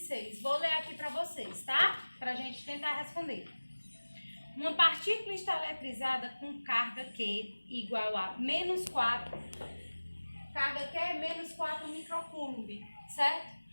Vou ler aqui para vocês, tá? Para a gente tentar responder. Uma partícula está eletrizada com carga Q igual a menos 4. Carga Q é menos 4 microcoulomb, certo?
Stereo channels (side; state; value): both; inverted; correlation -1.00